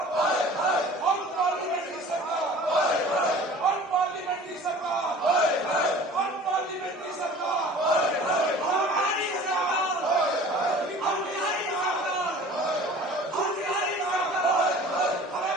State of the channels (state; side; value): normal; both; correlation 0.45